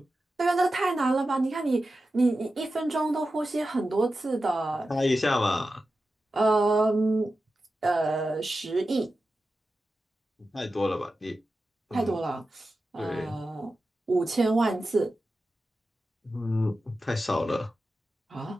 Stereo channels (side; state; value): both; normal; correlation 0.92